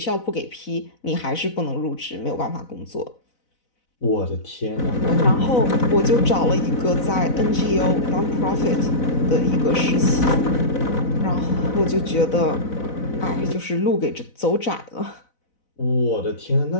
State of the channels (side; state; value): right; late; 4.0 ms